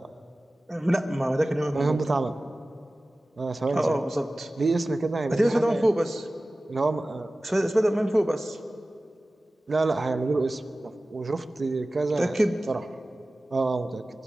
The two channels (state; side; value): normal; both; correlation 0.97